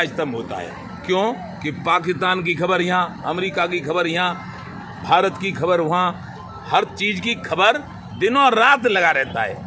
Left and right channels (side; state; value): both; identical; correlation 1.00